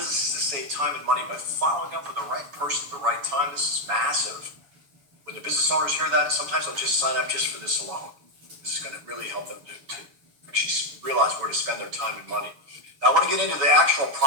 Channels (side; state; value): left; late; 7.0 ms